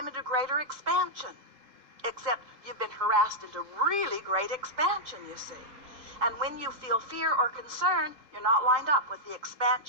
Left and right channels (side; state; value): left; late; 3.9 ms